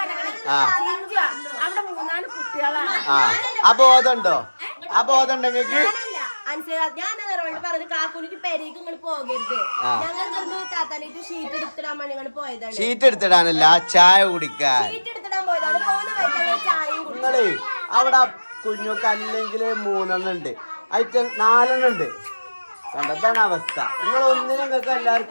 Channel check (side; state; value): both; inverted; correlation -1.00